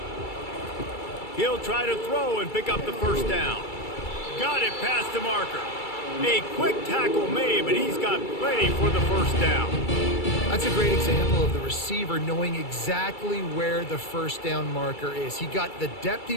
He'll try to throw and pick up the 1st down. Got it past the marker. A quick tackle made, but he's got plenty for the 1st down. That's a great example of the receiver knowing exactly where the 1st down marker is. He got the depth he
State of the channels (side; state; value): right; late; 2.3 ms